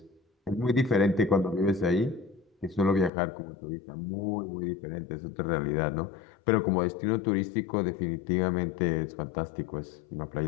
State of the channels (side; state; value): right; drops out; at 3.1 s